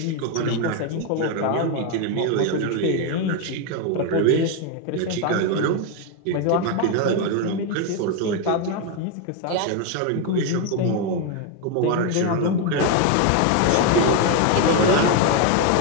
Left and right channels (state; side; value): different; both; correlation 0.02